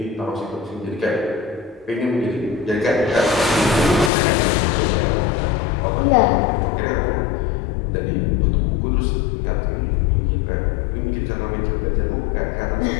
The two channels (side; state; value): right; drops out; at 4.1 s